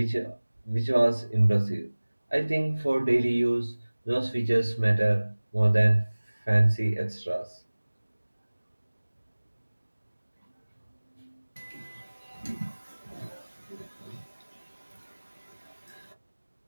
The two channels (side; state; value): both; inverted; correlation -1.00